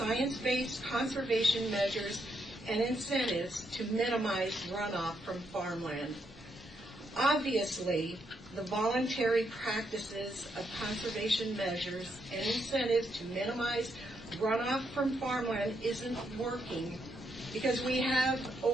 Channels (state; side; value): normal; both; correlation 0.78